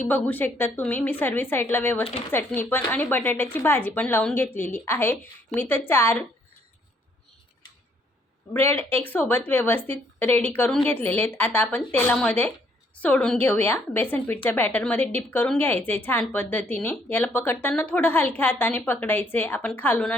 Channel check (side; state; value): both; normal; correlation 0.67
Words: बघू शकता तुम्ही। मी सर्व साईडला व्यवस्थित चटणी पण आणि बटाट्याची भाजी पण लावून घेतलेली आहे। मी तर 4 ब्रेड एक सोबत व्यवस्थित रेडी करून घेतलेले आहेत। आता आपण तेलामध्ये सोडून घेऊया। बेसन पीठच्या बॅटरमध्ये डिप करून घ्यायचे छान पद्धतीने। याला पकडताना थोडं हलक्या हाताने पकडायचे। आपण खालून